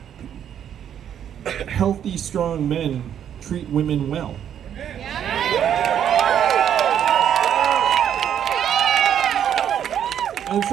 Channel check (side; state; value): left; quieter; 9.4 dB